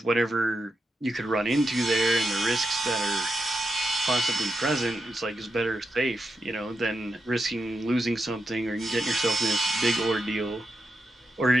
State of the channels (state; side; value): normal; both; correlation 0.87